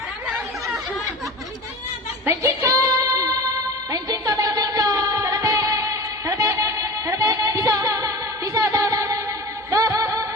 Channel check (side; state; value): both; normal; correlation 0.33